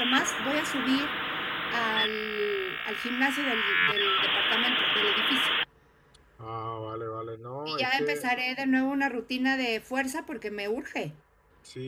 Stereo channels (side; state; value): both; identical; correlation 1.00